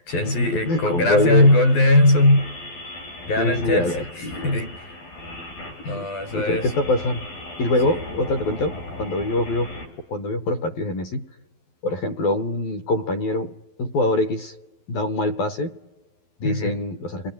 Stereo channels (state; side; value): late; right; 12 ms